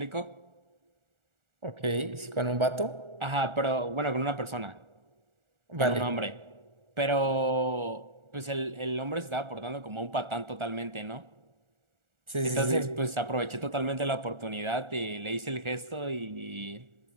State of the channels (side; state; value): left; late; 1.4 ms